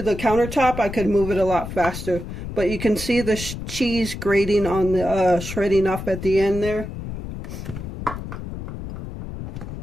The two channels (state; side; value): noise; left; rumble, 8 dB below the sound